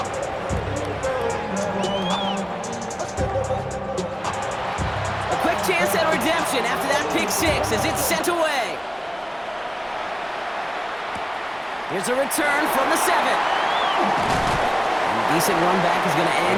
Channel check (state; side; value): identical; both; correlation 1.00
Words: Chance at redemption after that pick 6 as it's sent away. Here's a return from the 7. And a decent run back is going to